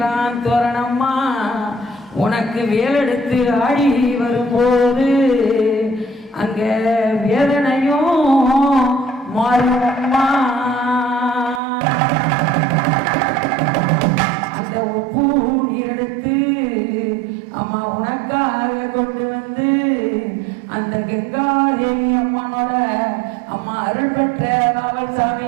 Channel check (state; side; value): drops out; left; at 11.6 s